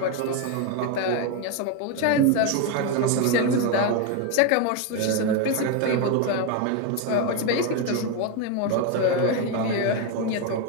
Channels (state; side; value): different; both; correlation 0.02